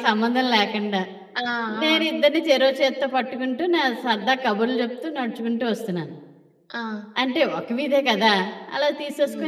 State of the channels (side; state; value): both; identical; correlation 1.00